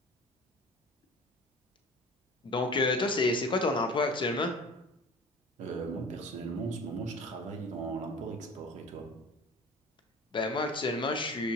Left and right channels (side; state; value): both; normal; correlation 0.40